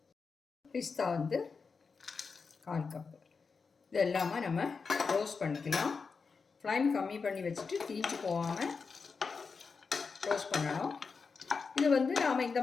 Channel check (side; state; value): right; quieter; 5.0 dB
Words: பிஸ்தா கால் கப்பு. இது எல்லாமே நம்ம ரோஸ்ட் பண்ணிக்கலாம். ஃப்ளைம் கம்மி பண்ணி வச்சுட்டு தீஞ்சு போகாமல் ரோஸ்ட் பண்ணணும். இது நாம் இந்த